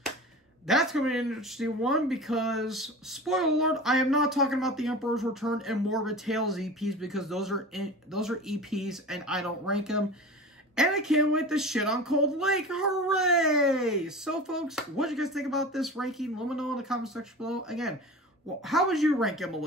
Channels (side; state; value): both; normal; correlation 0.34